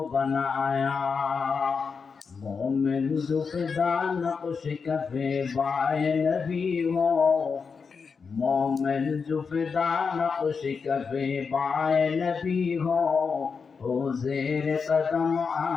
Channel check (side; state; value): right; quieter; 5.4 dB